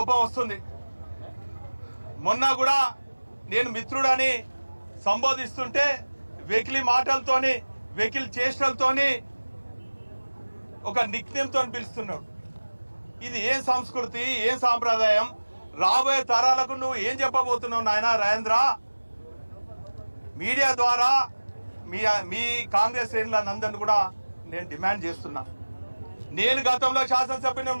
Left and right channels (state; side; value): inverted; both; correlation -1.00